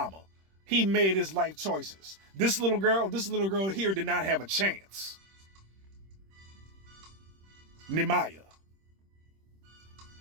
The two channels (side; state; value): left; late; 26 ms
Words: He made his life choices. This little girl here did not have a chance. Nemaya.